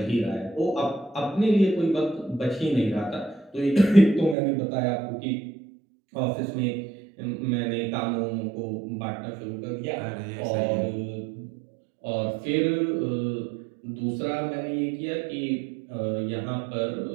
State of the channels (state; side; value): drops out; left; at 4.4 s